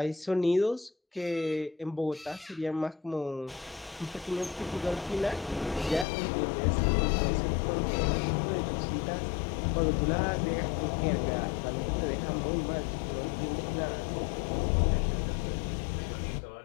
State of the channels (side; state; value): right; drops out; at 6.1 s